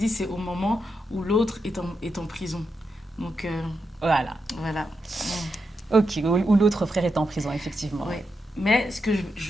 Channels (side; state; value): both; normal; correlation 0.85